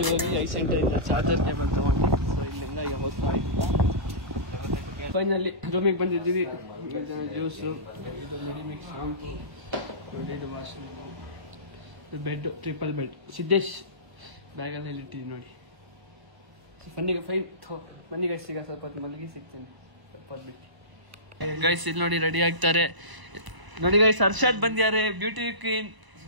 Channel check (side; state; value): left; late; 1.0 ms